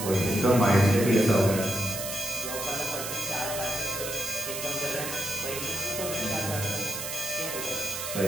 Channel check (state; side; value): noise; right; hiss, 5 dB below the sound